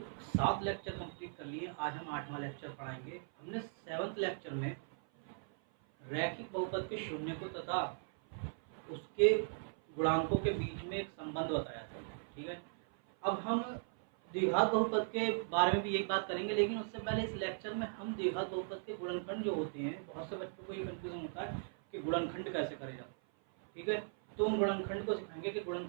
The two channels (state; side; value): silent; left; 52 dB below the other